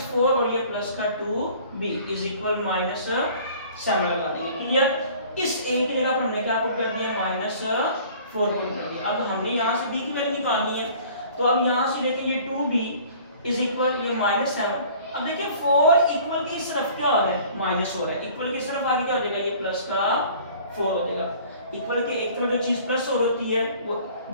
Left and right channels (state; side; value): inverted; both; correlation -0.49